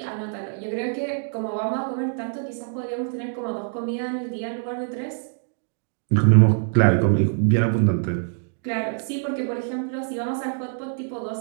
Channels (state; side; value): silent; left; digital silence